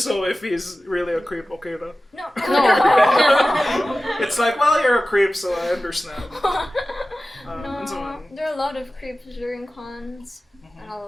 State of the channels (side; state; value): both; normal; correlation 0.96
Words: if he's really a creep, okay na? No. It's like, well, you're a creep, so I understand. And so No. on. There are a lot of creeps during cons. And a